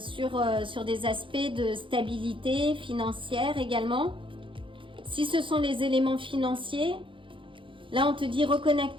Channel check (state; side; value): late; left; 0.25 ms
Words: des aspects de stabilité financière également. Si ce sont les éléments financiers, là on te dit